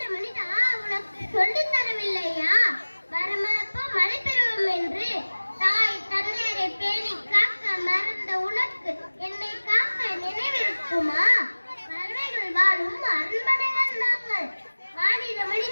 மனிதா உனக்கு சொல்லி தரவில்லையா? வரமளப்போ மழை பெறுவோம் என்று தாய் தந்தையரை பேணி காக்க மறந்த உனக்கு என்னை காக்க நினைவிருக்குமா? பறவைகள் வாழும் அரண்மனைகள் நாங்கள். மாநில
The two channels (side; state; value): both; inverted; correlation -1.00